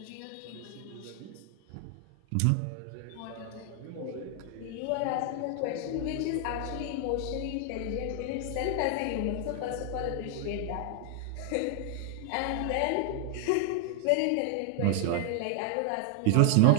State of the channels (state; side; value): different; both; correlation 0.00